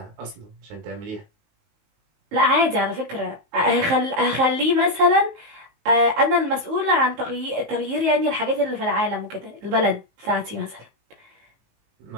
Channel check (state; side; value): late; left; 19 ms